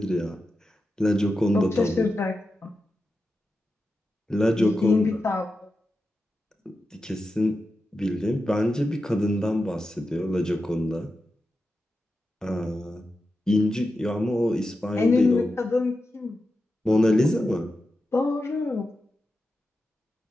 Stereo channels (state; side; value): normal; both; correlation 0.90